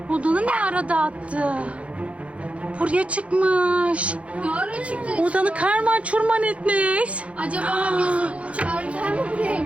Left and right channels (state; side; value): late; left; 0.063 ms